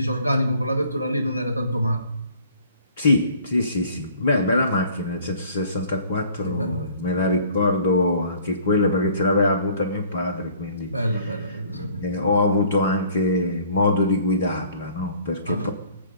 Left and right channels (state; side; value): inverted; both; correlation -0.54